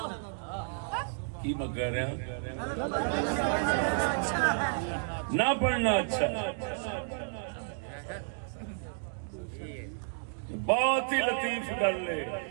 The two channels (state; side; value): silent; left; digital silence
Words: کی میں کہہ رہے ہیں؟ نہ پڑھنا اچھا ہے۔ بہت ہی لطیف گل ہے،